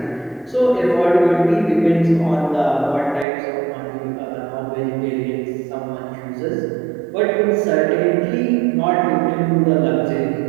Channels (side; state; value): left; drops out; at 3.2 s